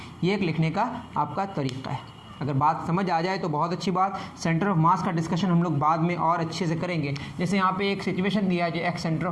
ये एक लिखने का आपका तरीका है। अगर बात समझ आ जाए तो बहुत अच्छी बात। सेंटर ऑफ मास का डिस्कशन हम लोग बाद में और अच्छे से करेंगे। जैसे यहाँ पे एक सिचुएशन दिया है, जो एक सेंटर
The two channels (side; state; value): both; identical; correlation 1.00